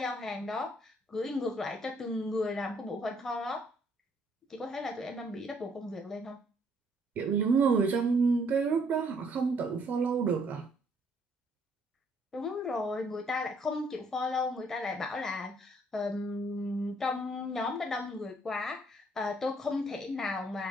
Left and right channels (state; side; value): normal; both; correlation 0.66